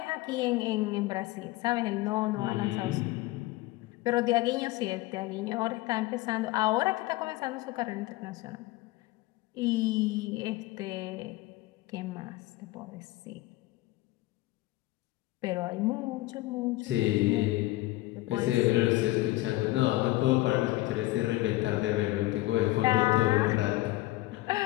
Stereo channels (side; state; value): right; quieter; 18.5 dB